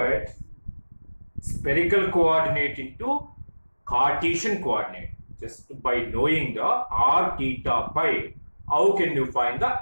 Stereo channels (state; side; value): inverted; both; correlation -1.00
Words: spherical coordinate into Cartesian coordinate. Just by knowing the r theta pi, how can you find